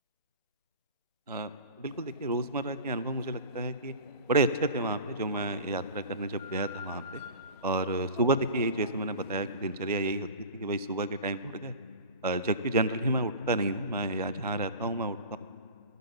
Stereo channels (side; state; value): both; inverted; correlation -0.36